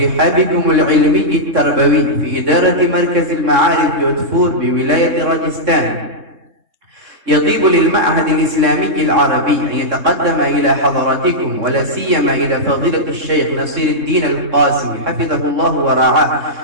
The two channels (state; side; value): late; left; 3.6 ms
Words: رحابكم العلمي التربوي في إدارة مركز المعارف جودهپور بولاية راجستان، يطيب للمعهد الإسلامي العربي أن يتقدم إلى حضراتكم ولا سيما إلى فضيلة الشيخ نصير الدين القاسمي حفظه الله ورعاه